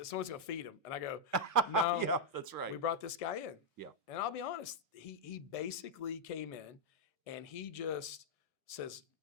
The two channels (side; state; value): both; normal; correlation -0.04